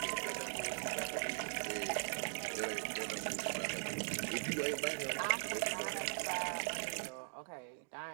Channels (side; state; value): left; silent; digital silence